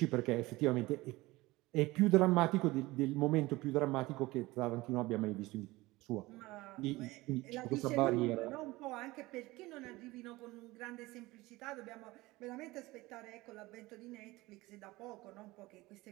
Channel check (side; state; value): left; quieter; 20.2 dB